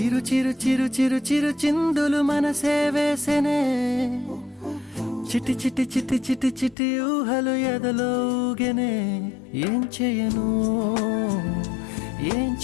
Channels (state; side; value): drops out; right; at 6.8 s